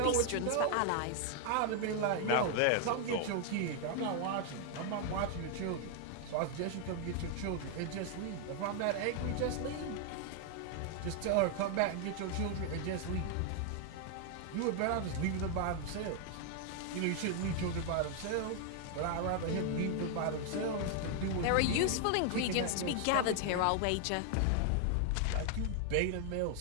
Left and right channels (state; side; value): different; both; correlation 0.00